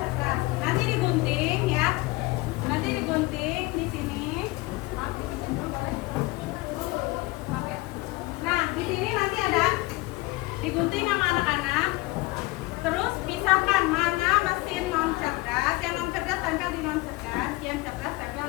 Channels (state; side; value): quieter; right; 21.8 dB